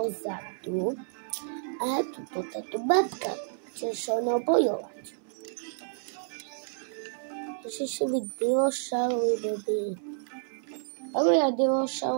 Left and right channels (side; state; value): left; silent; 58 dB below the other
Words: A tu táto babka chce sa mnou bojovať. Ešte si byť dinošaury, baby. Ale ja